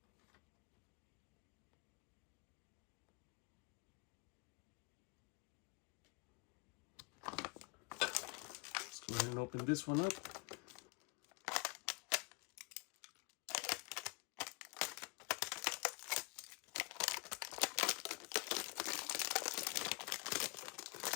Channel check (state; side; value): quieter; right; 30.9 dB